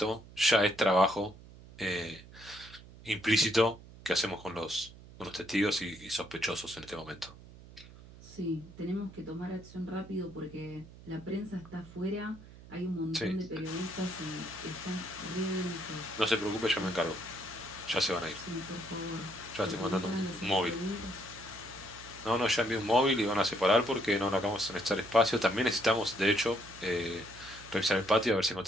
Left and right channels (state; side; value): noise; right; hum, 19 dB below the sound